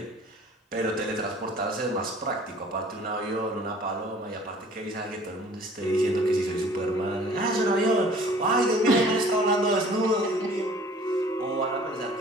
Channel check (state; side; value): normal; both; correlation 0.51